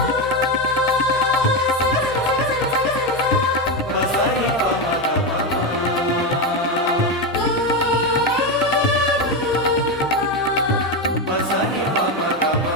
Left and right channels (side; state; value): both; normal; correlation 0.12